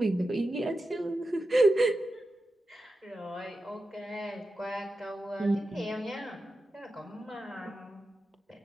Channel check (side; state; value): both; normal; correlation 0.90